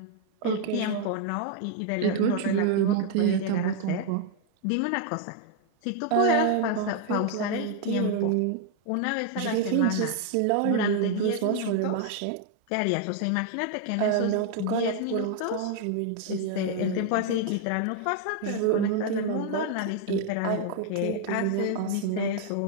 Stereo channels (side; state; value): both; different; correlation 0.00